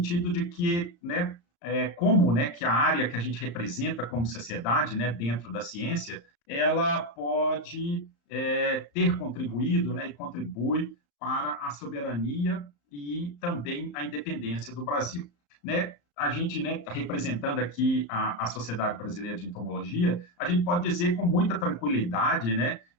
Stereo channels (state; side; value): late; right; 35 ms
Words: de que, né, como, né, que a área que a gente representa como sociedade, né, dentro da ciência, ela pode ter contribuído, né, e contribui para a soberania e também a independência do Brasil, né? A gente, né, representando aqui a Sociedade Brasileira de Entomologia, a gente pode dizer com muita tranquilidade, né,